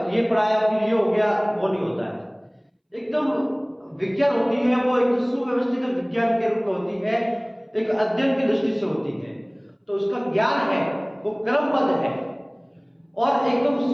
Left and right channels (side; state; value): both; identical; correlation 1.00